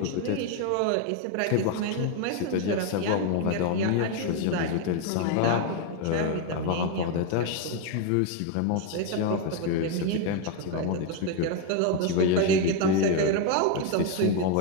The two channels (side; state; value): both; different; correlation 0.01